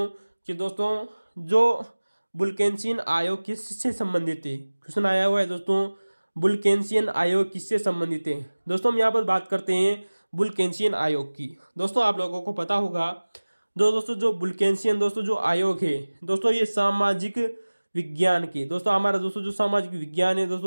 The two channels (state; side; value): inverted; both; correlation -1.00